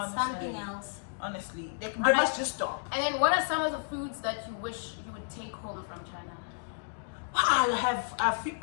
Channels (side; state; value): right; silent; digital silence